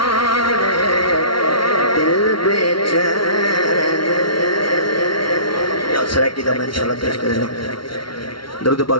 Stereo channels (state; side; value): late; right; 0.74 ms